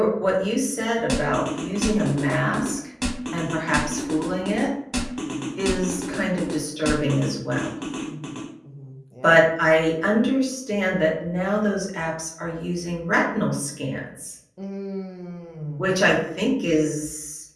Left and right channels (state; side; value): identical; both; correlation 1.00